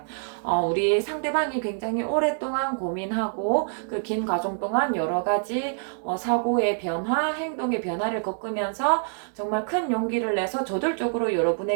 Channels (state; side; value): silent; left; digital silence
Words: 우리 상대방이 굉장히 오랫동안 고민하고 그 긴 과정 동안 여러 가지 사고의 변화, 행동의 변화를 겪으면서 정말 큰 용기를 내서 저돌적으로